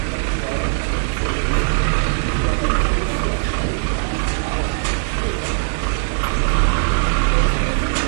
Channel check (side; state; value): left; silent; 63 dB below the other